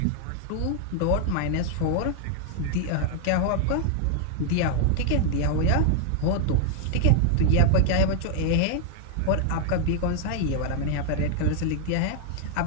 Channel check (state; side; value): different; both; correlation 0.00